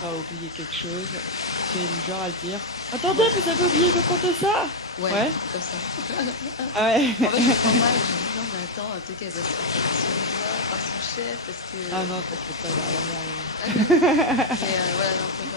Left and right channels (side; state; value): both; normal; correlation 0.00